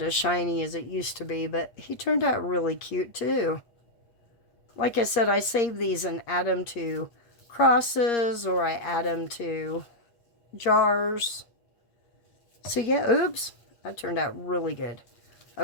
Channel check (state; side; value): late; right; 8.5 ms